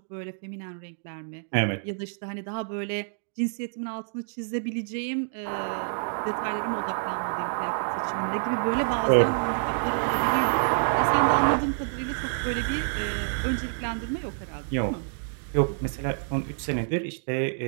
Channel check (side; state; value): left; silent; digital silence